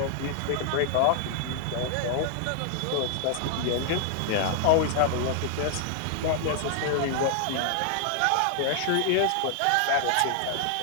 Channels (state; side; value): different; both; correlation 0.00